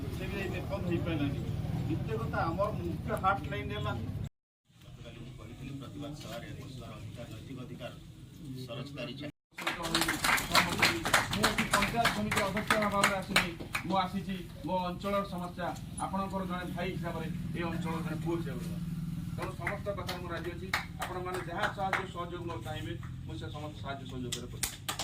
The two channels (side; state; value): both; identical; correlation 1.00